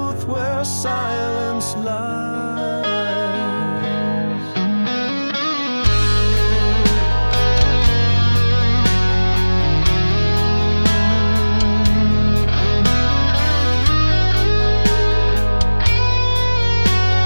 where silence lies.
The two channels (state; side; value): inverted; both; correlation -1.00